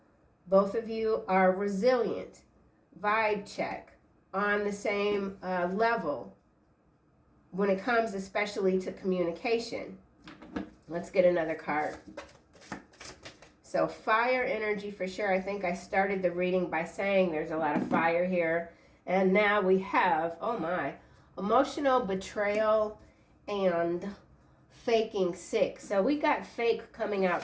Both of you are resilient. Vibe check. On the same level when it comes especially to communication. Let's get another card. So fire energy for sure. I think I started the reading by saying there's a lot of fire here. And now we have, oh my, emotional betrayal and faking sick. So we got fake coming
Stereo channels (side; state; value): both; identical; correlation 1.00